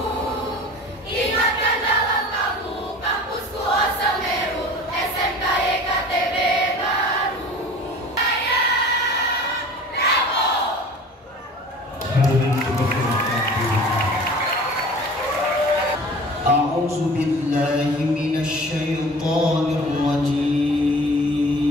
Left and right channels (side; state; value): both; normal; correlation 0.42